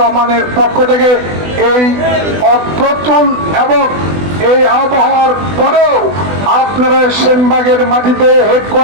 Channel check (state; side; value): late; left; 20 ms